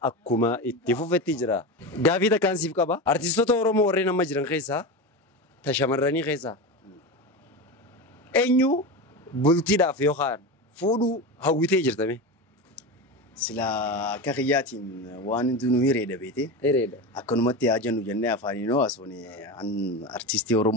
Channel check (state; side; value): normal; both; correlation 0.22